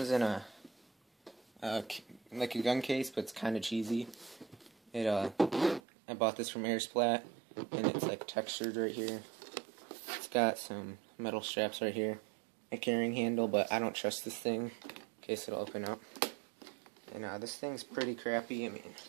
in a like a gun case, but it's kind of cheesy. I bought this from Airsplat, and it's like textured right here. It's got some metal straps right here, a carrying handle, but I don't trust this thing in case it'll open up. And this thing's pretty crappy. I mean,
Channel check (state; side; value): drops out; left; at 5.8 s